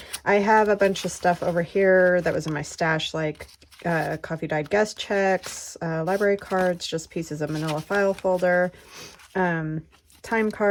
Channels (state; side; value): identical; both; correlation 1.00